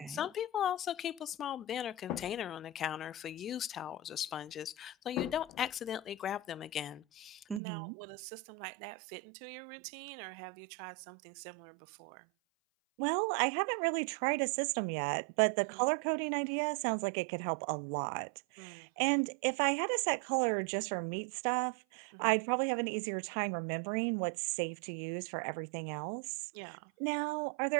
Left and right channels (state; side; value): drops out; left; at 7.6 s